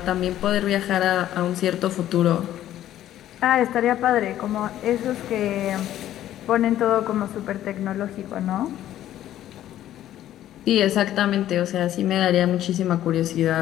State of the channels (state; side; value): quieter; right; 12.5 dB